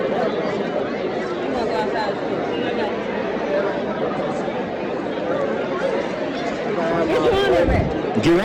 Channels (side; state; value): both; identical; correlation 1.00